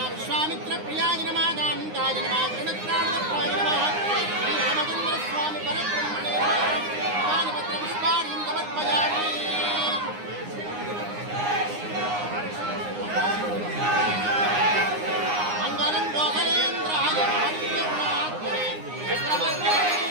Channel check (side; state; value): left; late; 9.7 ms